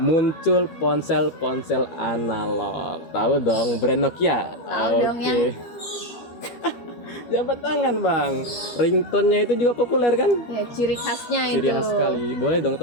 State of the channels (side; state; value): right; late; 13 ms